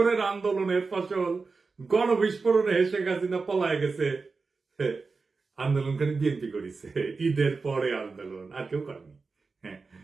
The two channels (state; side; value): quieter; left; 4.3 dB